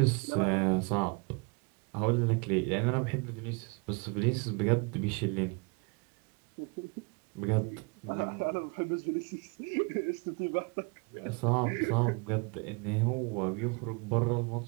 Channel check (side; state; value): left; quieter; 31.5 dB